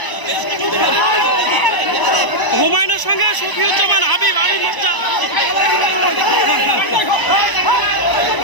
হুমায়ুনের সঙ্গে শফিউজ্জামান হাবিব মোর্চা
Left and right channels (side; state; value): right; late; 1.0 ms